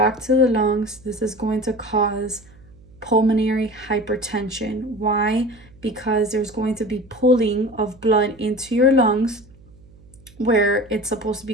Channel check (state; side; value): noise; right; hum, 25 dB below the sound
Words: to the lungs, this is going to cause pulmonary hypertension. Why? Because there's going to be pulling of blood into your lungs where it's supposed to